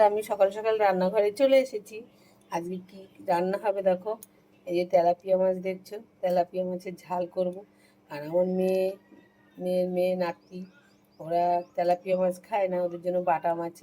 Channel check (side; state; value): both; identical; correlation 1.00